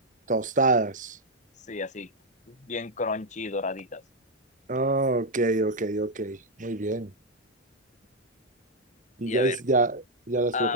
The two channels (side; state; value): both; normal; correlation -0.01